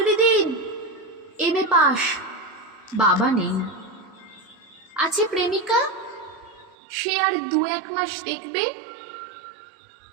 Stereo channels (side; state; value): left; drops out; at 6.8 s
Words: দিন, এমএ পাস। বাবা নেই। আছে প্রেমিকা, সে আর 2-1 মাস দেখবে,